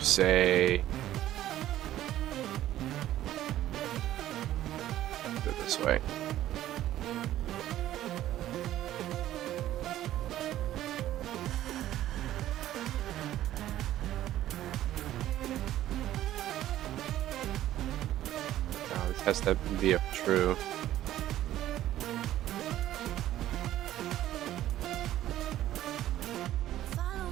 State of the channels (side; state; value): left; quieter; 13.3 dB